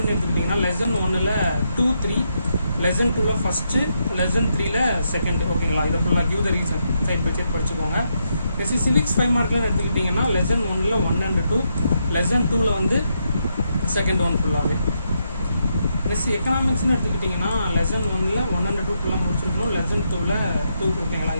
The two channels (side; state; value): both; inverted; correlation -0.80